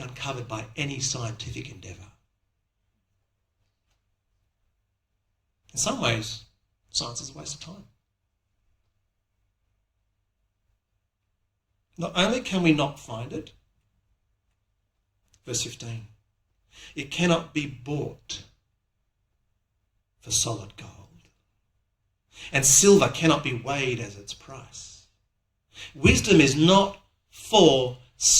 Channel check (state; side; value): identical; both; correlation 1.00